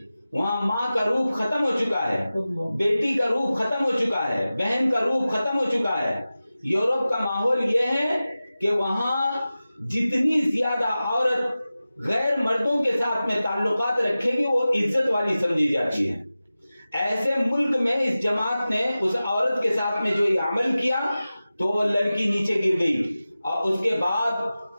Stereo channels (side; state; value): both; inverted; correlation -0.96